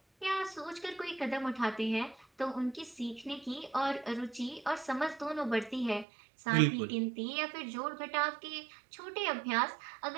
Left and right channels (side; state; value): left; drops out; at 6.1 s